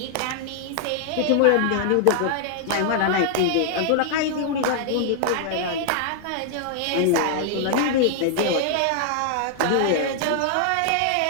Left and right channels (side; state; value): both; different; correlation 0.00